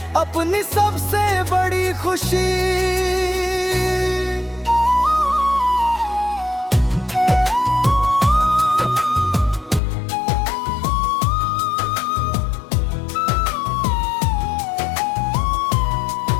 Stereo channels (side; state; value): right; drops out; at 9.8 s